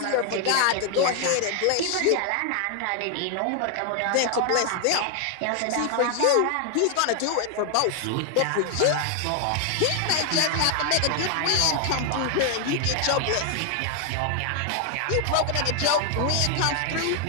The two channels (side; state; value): both; different; correlation 0.00